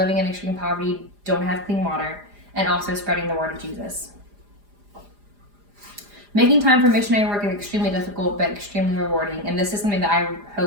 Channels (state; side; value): late; left; 4.9 ms